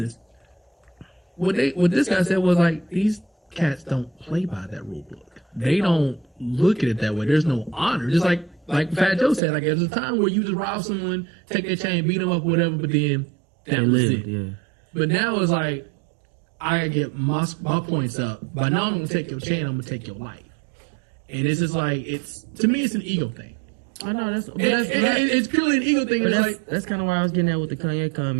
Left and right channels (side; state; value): left; drops out; at 9.4 s